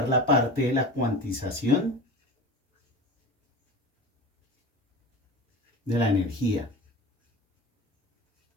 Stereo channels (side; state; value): both; normal; correlation 0.32